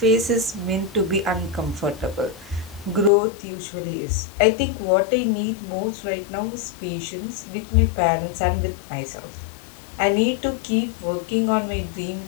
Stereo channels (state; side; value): drops out; right; at 3.1 s